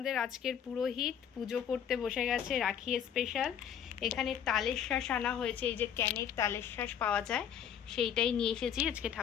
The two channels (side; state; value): right; quieter; 8.8 dB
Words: আজকের পুরোহিত পুজো করতে বসে গেছে, রাখি স্পেশাল। এখানে তালের শাঁস আনা হয়েছে, এই যে ক্যানের তালের শাঁস পাওয়া যায়, সেইটাই নিয়ে এসেছি আজকে